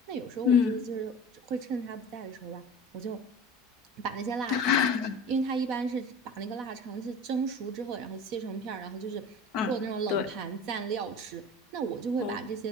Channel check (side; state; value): both; normal; correlation 0.37